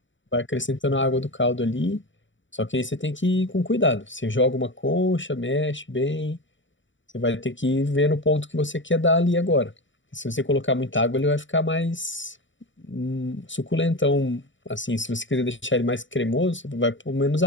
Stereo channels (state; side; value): late; right; 0.55 ms